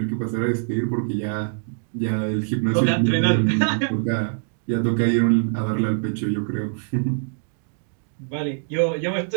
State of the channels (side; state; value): left; silent; digital silence